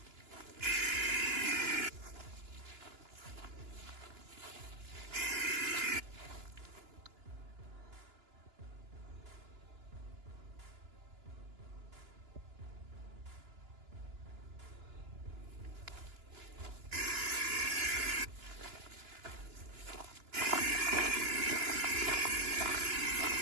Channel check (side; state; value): left; late; 2.9 ms